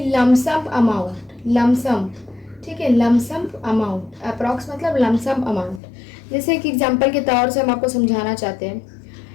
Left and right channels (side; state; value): right; drops out; at 5.8 s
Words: लमसम अमाउंट, लमसम, ठीक है, लमसम अमाउंट। अप्रॉक्स मतलब लमसम अमाउंट। जैसे कि एग्जाम्पल के तौर से हम आपको समझाना चाहते हैं